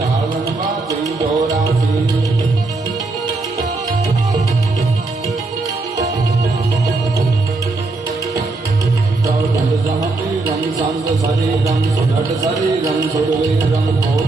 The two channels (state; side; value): quieter; left; 3.5 dB